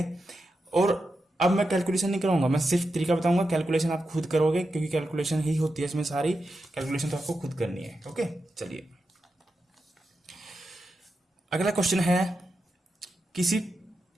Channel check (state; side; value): normal; both; correlation 0.88